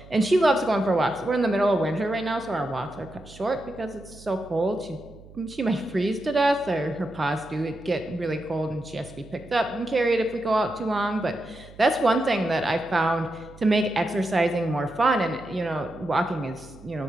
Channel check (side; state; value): right; noise; hum, 20 dB below the sound